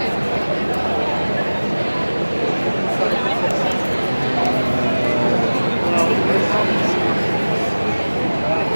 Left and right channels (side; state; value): both; inverted; correlation -1.00